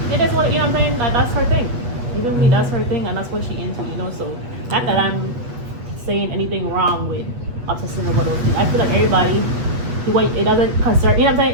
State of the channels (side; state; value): left; late; 8.2 ms